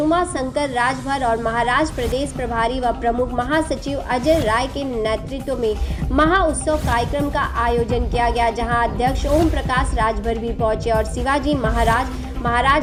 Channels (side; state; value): both; identical; correlation 1.00